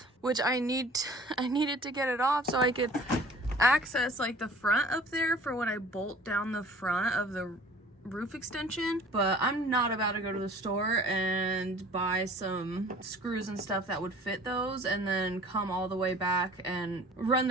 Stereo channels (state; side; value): normal; both; correlation 0.48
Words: which I needed to get it off so I could access like the front up there for when I bolt down the front of the roof extension. But I'm not about to go to the store and buy some screws and stuff that would fit those and then come all the way back and run